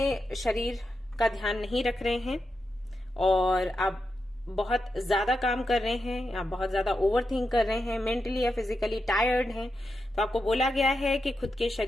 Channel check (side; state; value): both; normal; correlation 0.87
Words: शरीर का ध्यान नहीं रख रहे हैं और आप बहुत ज्यादा काम कर रहे हैं या बहुत ज्यादा ओवर थिंक कर रहे हैं, मेंटली या फिजिकली टायर्ड हैं। तो आपको बोला गया है कि खुद के